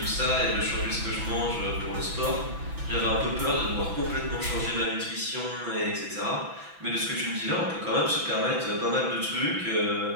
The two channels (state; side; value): late; left; 6.0 ms